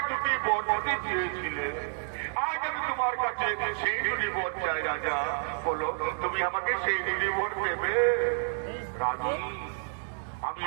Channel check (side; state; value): left; silent; 58 dB below the other